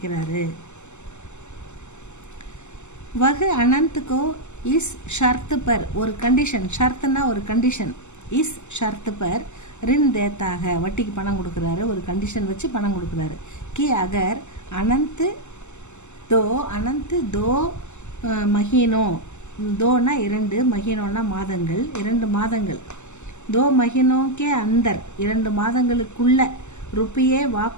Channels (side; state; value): right; late; 0.83 ms